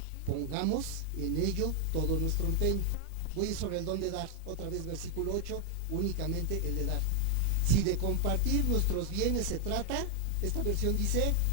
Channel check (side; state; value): both; different; correlation 0.00